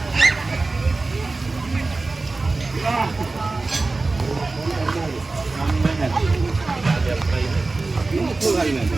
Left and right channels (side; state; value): left; quieter; 3.5 dB